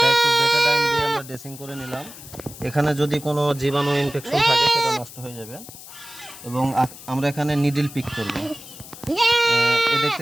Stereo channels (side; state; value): left; noise; hiss, 16 dB below the sound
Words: ড্রেসিং করে নিলাম। এখানে যদি কোনো জীবাণু ইনফেকশন থাকে সেটা নষ্ট হয়ে যাবে। এবং আমরা এখানে নিডল পিক করব। এই